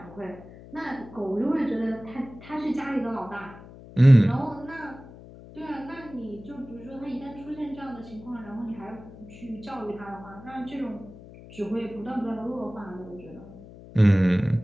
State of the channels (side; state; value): left; noise; hum, 18 dB below the sound